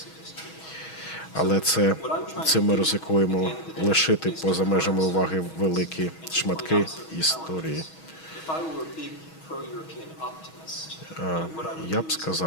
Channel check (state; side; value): late; right; 6.3 ms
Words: Але цим ми ризикуємо лишити поза межами уваги великі шматки історії. Я б